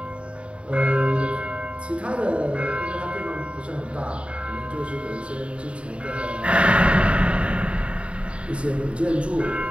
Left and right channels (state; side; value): late; left; 0.059 ms